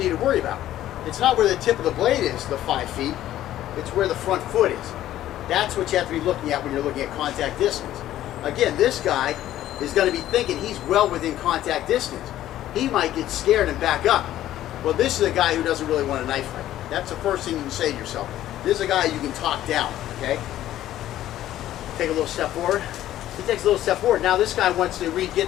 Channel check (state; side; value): quieter; right; 13.2 dB